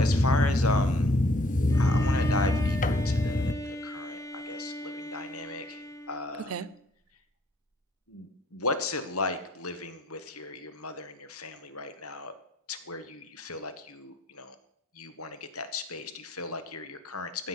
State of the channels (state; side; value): normal; both; correlation 0.63